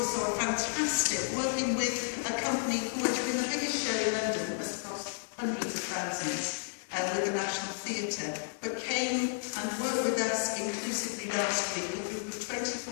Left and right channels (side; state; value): right; silent; 56 dB below the other